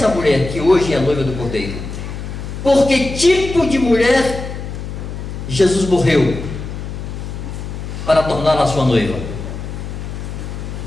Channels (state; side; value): noise; left; hum, 8 dB below the sound